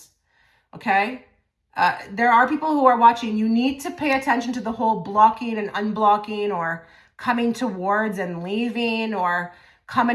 okay? There are people who are watching. You need to pay attention to the whole blocking and unblocking, or coming towards and leaving, or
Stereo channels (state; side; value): identical; both; correlation 1.00